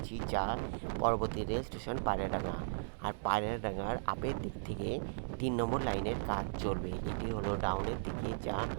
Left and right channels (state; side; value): silent; left; digital silence